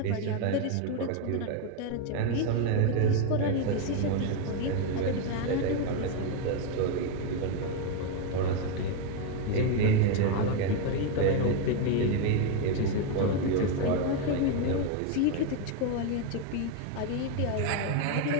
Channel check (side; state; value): both; different; correlation 0.02